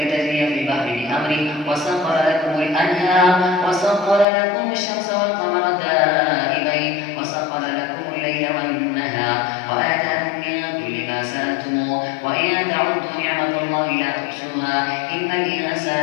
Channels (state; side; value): drops out; right; at 4.2 s